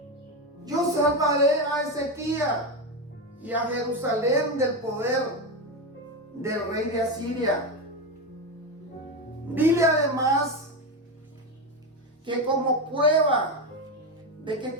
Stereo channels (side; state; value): both; normal; correlation 0.14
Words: Yo salvaré a Ezequías y a Jerusalén del poder del rey de Asiria. Dile además que como prueba de que